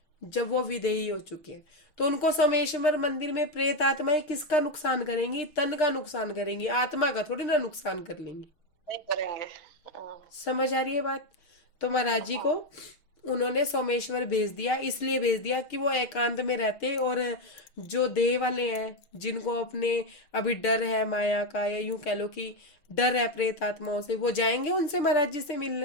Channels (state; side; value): late; right; 6.3 ms